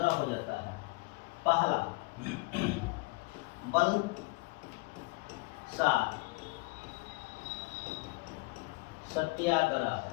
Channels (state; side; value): quieter; right; 25.1 dB